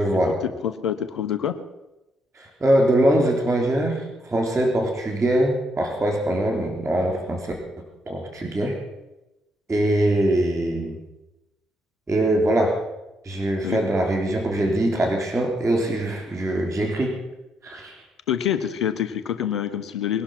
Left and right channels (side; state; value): both; normal; correlation 0.76